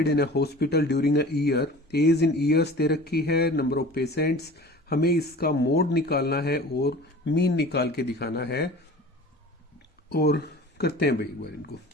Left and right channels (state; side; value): normal; both; correlation 0.41